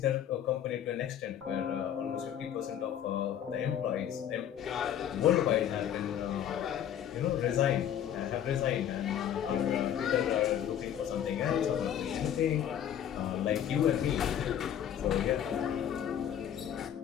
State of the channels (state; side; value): quieter; right; 9.8 dB